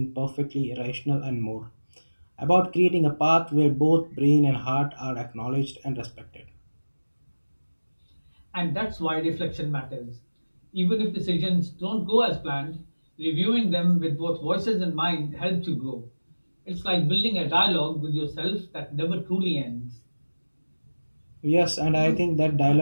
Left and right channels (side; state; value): both; inverted; correlation -1.00